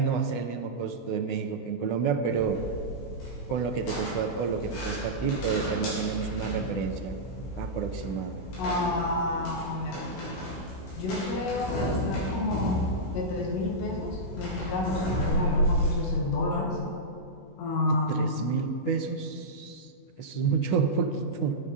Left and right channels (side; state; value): right; late; 16 ms